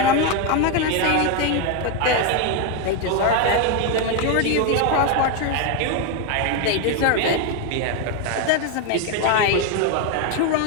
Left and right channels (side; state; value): both; different; correlation 0.02